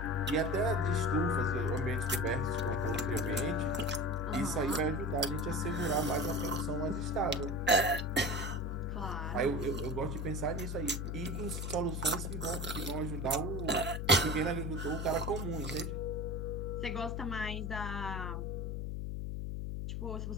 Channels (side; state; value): left; noise; hum, 3 dB below the sound